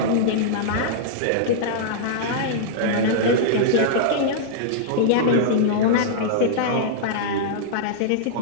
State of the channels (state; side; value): different; both; correlation -0.02